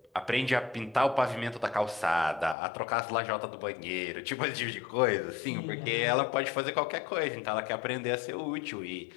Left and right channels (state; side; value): drops out; right; at 2.6 s